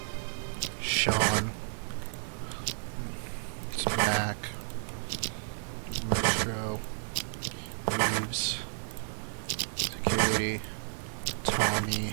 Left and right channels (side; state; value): left; silent; 56 dB below the other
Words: Sean, it's Mac, Metro, Reeves, Security,